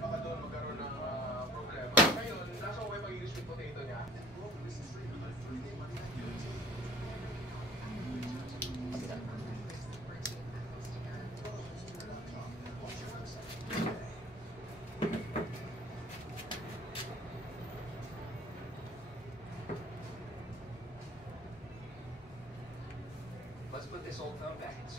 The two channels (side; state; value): both; normal; correlation 0.50